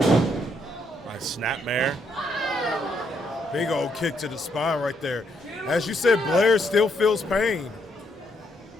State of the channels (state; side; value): normal; both; correlation 0.74